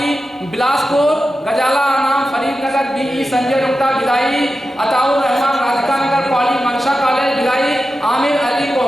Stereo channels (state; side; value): normal; both; correlation 0.92